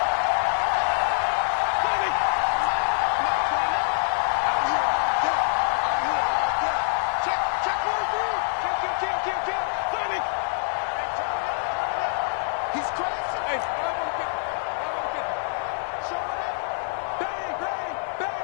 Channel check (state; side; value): silent; right; digital silence